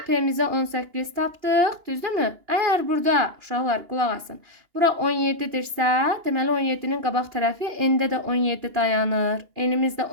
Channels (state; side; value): late; left; 2.8 ms